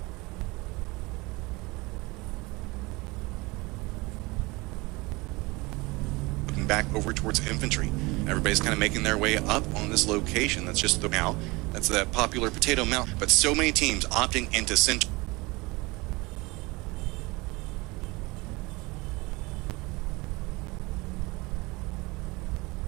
Back over towards infantry. Everybody's kind of making their way up on this location. That's just the now. That's that popular potato mount. But so many teams opting into center.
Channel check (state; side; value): quieter; left; 23.9 dB